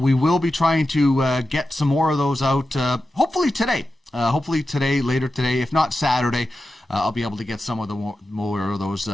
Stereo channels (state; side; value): normal; both; correlation 0.92